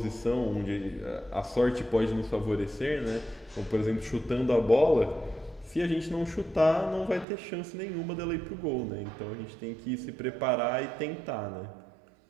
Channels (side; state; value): left; drops out; at 7.2 s